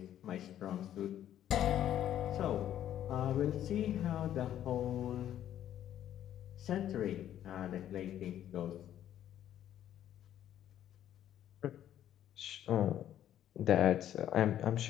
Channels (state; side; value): quieter; right; 11.2 dB